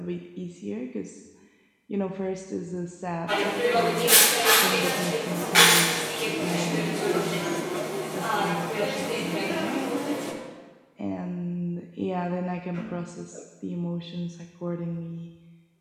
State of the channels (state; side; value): identical; both; correlation 1.00